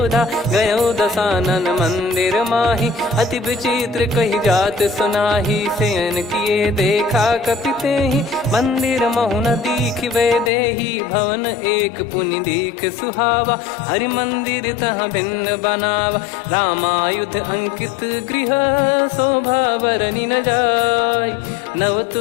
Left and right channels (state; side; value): drops out; right; at 10.5 s